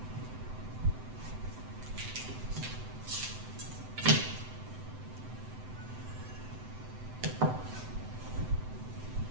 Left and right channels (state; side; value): late; left; 7.9 ms